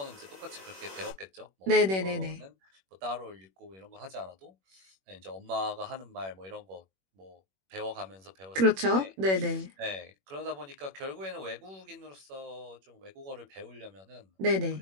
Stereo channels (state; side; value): late; left; 21 ms